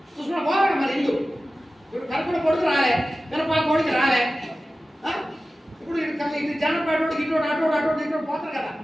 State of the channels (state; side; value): normal; both; correlation 0.95